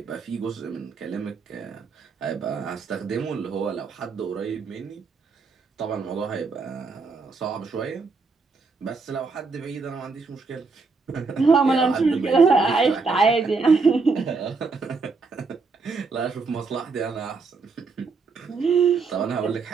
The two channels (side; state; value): left; quieter; 4.4 dB